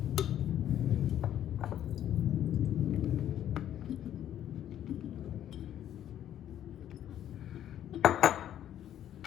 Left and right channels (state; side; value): quieter; right; 11.1 dB